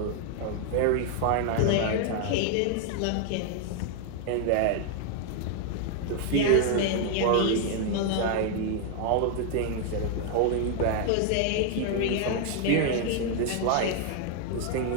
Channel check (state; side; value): different; both; correlation 0.00